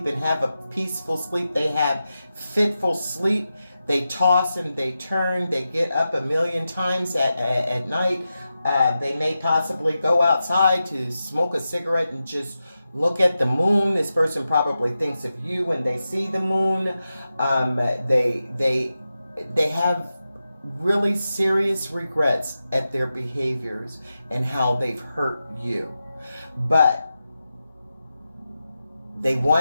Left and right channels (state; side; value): inverted; both; correlation -0.91